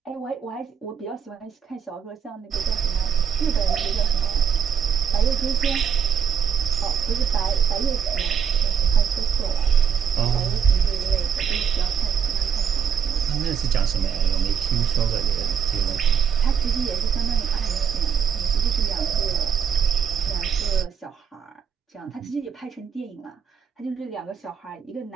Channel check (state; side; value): quieter; left; 7.4 dB